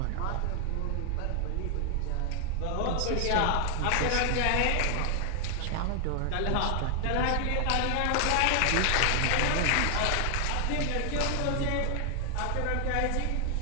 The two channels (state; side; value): different; both; correlation 0.00